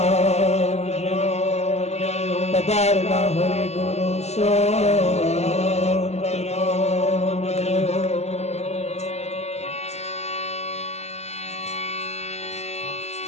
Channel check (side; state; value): right; late; 0.32 ms